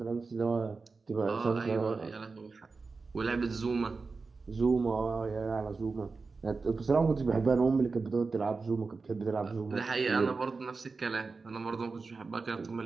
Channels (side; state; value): left; quieter; 4.3 dB